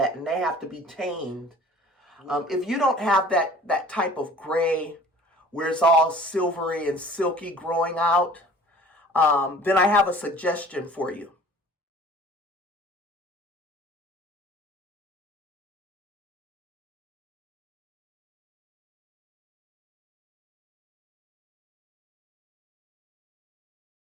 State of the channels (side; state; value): both; normal; correlation 0.48